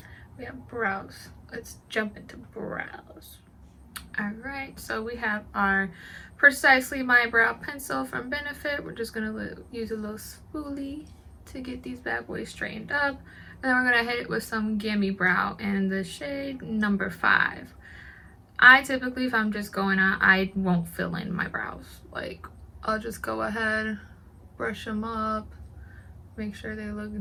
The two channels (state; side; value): identical; both; correlation 1.00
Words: We have brows. Let's jump into brows. Alright, so we have our Precisely My Brow Pencil from Benefit. We're just going to use a little spoolie to get these bad boys straightened up. And then we're going to hit it with some Gimme Brow in the shade number 5. I typically, if I'm just going out, I won't fill in my brows. Like, I'll just go ahead, brush them up, make sure they